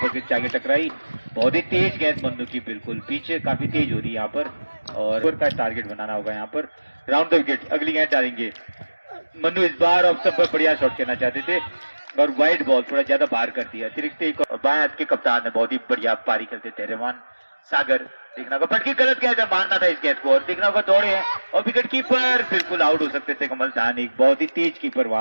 पर जाके टकराई। बहुत ही तेज गेंद मन्नू की, बिल्कुल पीछे काफी तेज हो रही है यहाँ पर और का टारगेट बनाना होगा यहाँ पर। राउंड द विकेट, अगली गेंद डालेंगे मन्नू, इस बार ऑफ स्टंप पर बढ़िया शॉट खेलना चाहते थे और वाइड बॉल थोड़ा ज्यादा बाहर कर दिया। अतिरिक्त एक बाएं हाथ के कप्तान है, बहुत ही बढ़िया पारी खेलते थे रहमान सागर। देखना होगा पटकी गलत गेंद है, मारना था इस गेंद को और देखना होगा दौड़े हैं और विकेट कीपर बिल्कुल आउट हो सकते थे कमल धानिक, बहुत ही तेज कीपर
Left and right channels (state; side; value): inverted; both; correlation -1.00